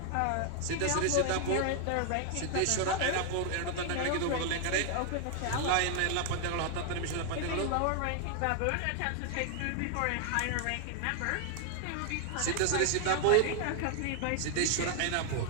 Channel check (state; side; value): different; both; correlation 0.00